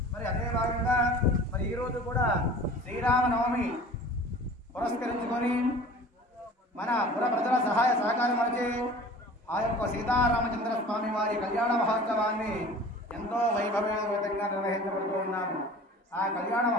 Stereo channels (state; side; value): normal; both; correlation 0.43